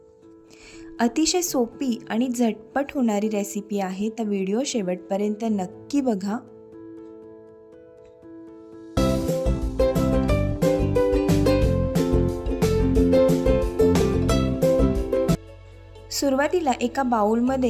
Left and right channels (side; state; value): both; identical; correlation 1.00